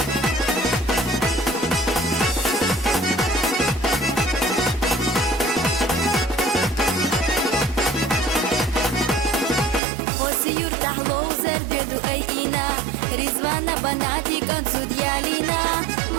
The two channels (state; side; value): drops out; left; at 9.8 s